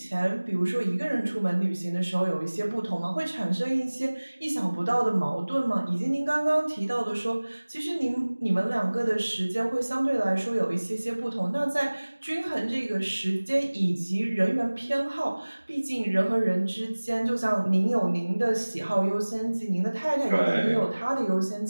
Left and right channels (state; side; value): inverted; both; correlation -1.00